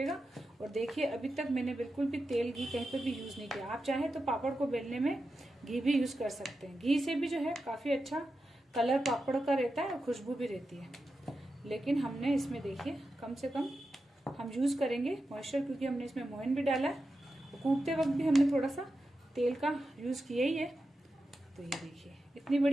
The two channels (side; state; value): both; normal; correlation 0.90